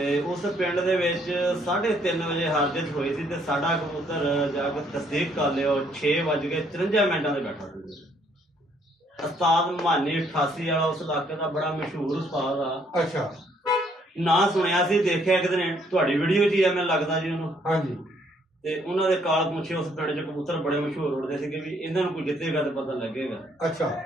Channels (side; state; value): both; normal; correlation 0.67